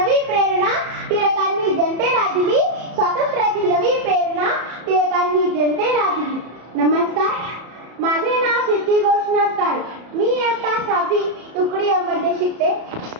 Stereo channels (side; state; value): left; late; 33 ms